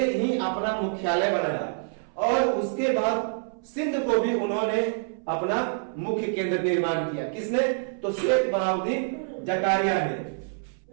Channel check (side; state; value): left; silent; 60 dB below the other